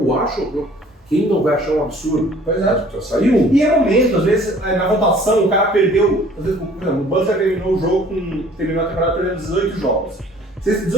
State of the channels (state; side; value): normal; both; correlation 0.53